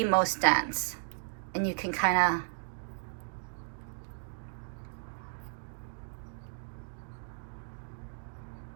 most dense. And you can kind of,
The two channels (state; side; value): silent; left; digital silence